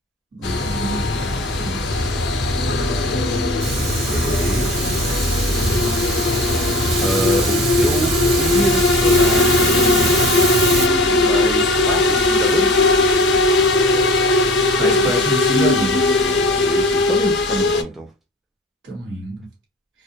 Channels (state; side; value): normal; both; correlation 0.40